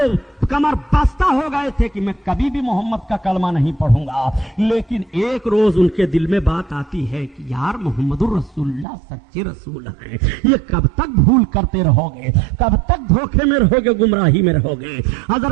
کمر بستہ ہو گئے تھے کہ میں کبھی بھی محمد کا کلمہ نہیں پڑھوں گا، لیکن ایک روز ان کے دل میں بات آتی ہے کہ یار محمد الرسول اللہ سچے رسول ہیں، یہ کب تک بھول کرتے رہو گے، کب تک دھوکے میں رہو گے، گمراہی میں رہو گے۔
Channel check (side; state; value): left; drops out; at 8.8 s